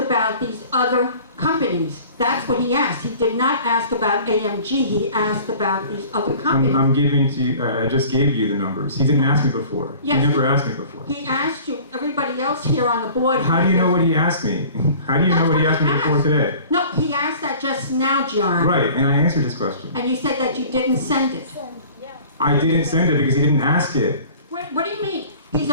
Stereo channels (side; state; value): both; inverted; correlation -0.46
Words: these other companies. That's what he asked. He did not ask about AMG. He asked about these other companies. I'm giving to you, I just gave you the numbers. He didn't ask me before. Yes. He never asked me before. He asked you. Everybody else here on the board. How do you know what he asked me? How do you know what he asked me before today? No, he asked that just now, John. Right, and I answered his question. And you said that you didn't send it. I didn't send it because he didn't ask it. What do you mean? He's